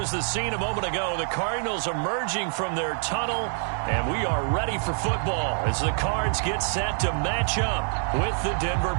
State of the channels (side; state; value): left; silent; 57 dB below the other